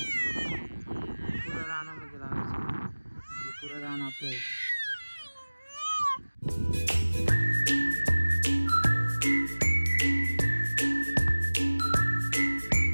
पुरा रानामध्ये लावायचं. म्हणजे पुरं रान आपलं आहे.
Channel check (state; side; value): inverted; both; correlation -1.00